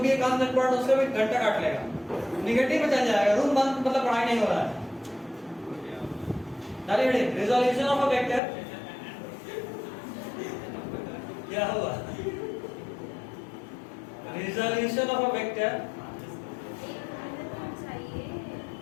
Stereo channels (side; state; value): right; drops out; at 8.4 s